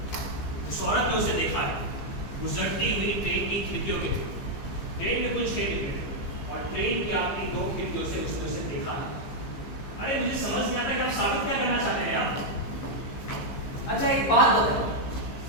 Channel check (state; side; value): late; right; 15 ms